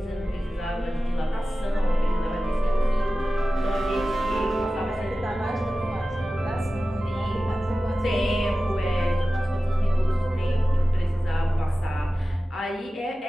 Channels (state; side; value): normal; both; correlation 0.95